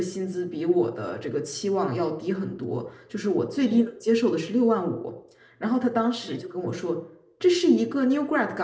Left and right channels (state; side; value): identical; both; correlation 1.00